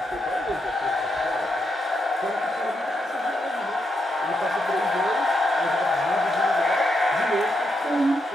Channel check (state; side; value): normal; both; correlation 0.82